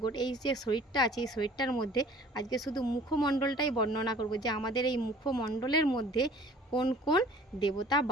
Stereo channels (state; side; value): normal; both; correlation 0.50